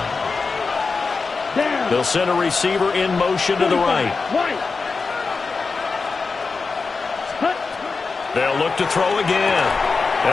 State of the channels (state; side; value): quieter; right; 4.4 dB